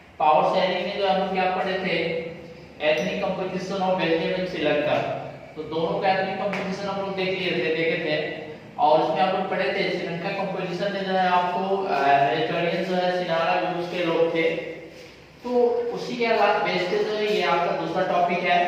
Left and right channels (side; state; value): both; identical; correlation 1.00